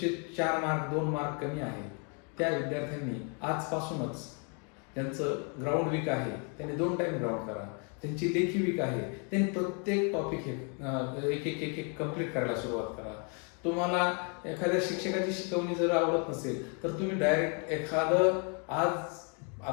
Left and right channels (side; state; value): right; quieter; 37.6 dB